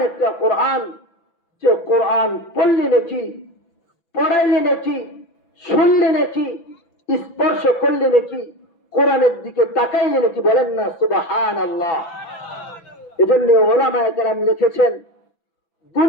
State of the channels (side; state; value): right; late; 6.0 ms